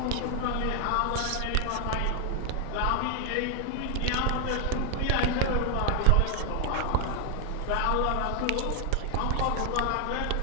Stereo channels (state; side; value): different; both; correlation 0.00